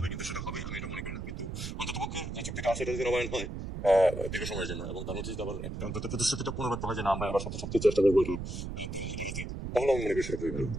কিন্তু সেটা হবে আমি এটা মনে করি না। কিন্তু অন্ততপক্ষে যে চুক্তিটা আছে এটা যদি নবায়ন হয় দীর্ঘ সময়ের জন্য, এবং তার মধ্যে যদি আবার একটা অন্তত প্রতিশ্রুতিটা পুনর্ব্যক্ত হয় যে না আমরা আবার সবচেয়ে চেষ্টা করবো, তাহলে আমি মনে করি সেটা খুবই ভালো।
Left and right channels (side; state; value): right; noise; rumble, 6 dB below the sound